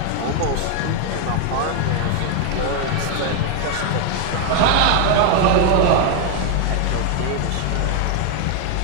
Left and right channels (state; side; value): different; both; correlation 0.01